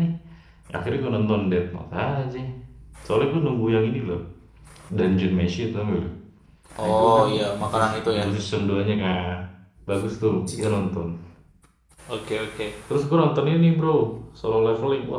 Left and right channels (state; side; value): identical; both; correlation 1.00